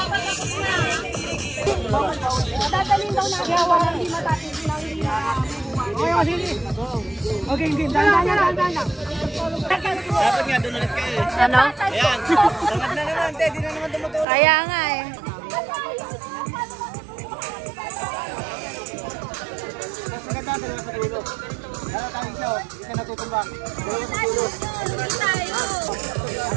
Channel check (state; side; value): drops out; left; at 14.2 s